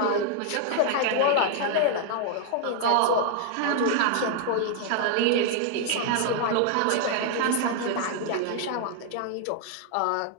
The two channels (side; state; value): both; different; correlation 0.00